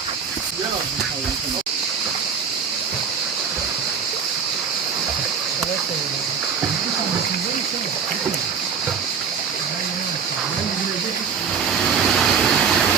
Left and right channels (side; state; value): left; quieter; 6.5 dB